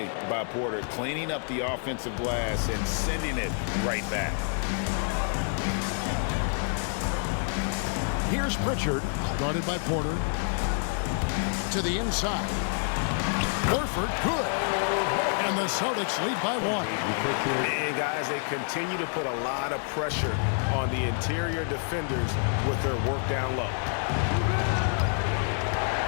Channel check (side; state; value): right; silent; 59 dB below the other